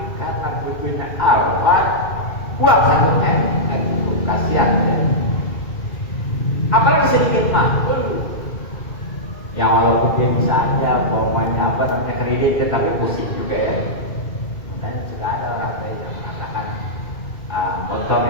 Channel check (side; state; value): right; late; 2.4 ms